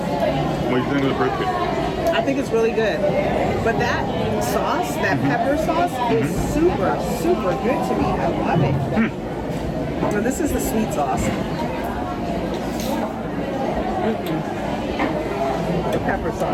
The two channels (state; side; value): identical; both; correlation 1.00